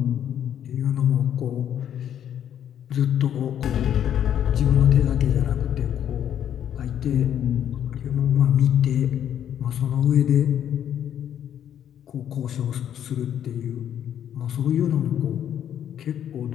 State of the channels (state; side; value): quieter; right; 9.9 dB